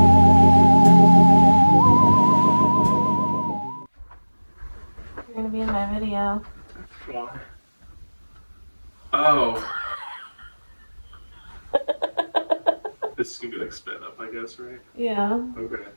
You're gonna be in my video. Why? Oh. This is gonna be like sped up, I guess, right? Yeah. Okay.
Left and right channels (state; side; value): inverted; both; correlation -1.00